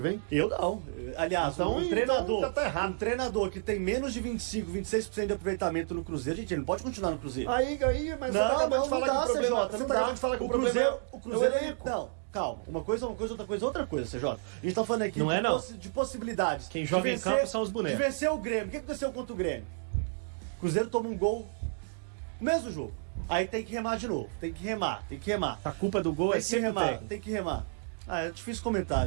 Eu não. Aliás, Então, treinador, tá errado. um treinador que tem menos de 25, 26% de aproveitamento no Cruzeiro, gente, ele não pode continuar no Cruzeiro. Mas você acabou de falar que o problema... CJ, não dá. O Cruzeiro, elenco. não, calma. Uma coisa, outra coisa, CJ. A gente tá falando aqui Não é, não. de possibilidades. Quem joga em campo são os bonecos. De vencer o Grêmio. O que aconteceu contra o Grêmio? O Cruzeiro toma um gol no mesmo jogo. Aí tem que remar de novo. Tem que remar. A culpa do gol é sempre o técnico. Tem que remar. É difícil comentar,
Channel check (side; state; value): left; silent; digital silence